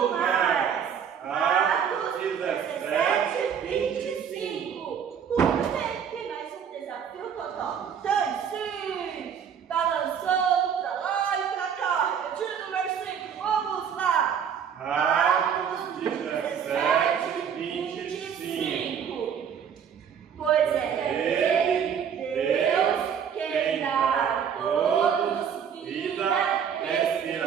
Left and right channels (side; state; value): left; quieter; 7.8 dB